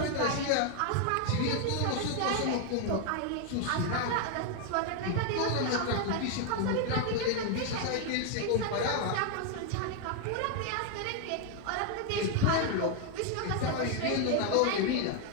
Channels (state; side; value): different; both; correlation 0.00